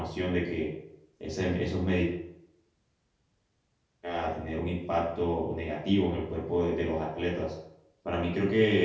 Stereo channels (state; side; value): identical; both; correlation 1.00